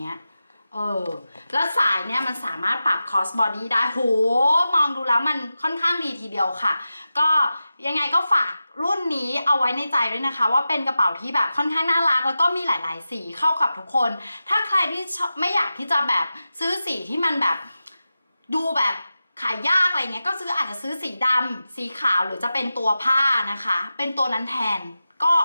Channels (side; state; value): both; inverted; correlation -0.93